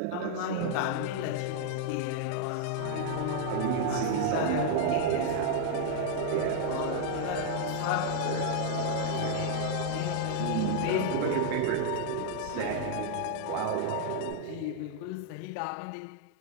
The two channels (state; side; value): different; both; correlation -0.01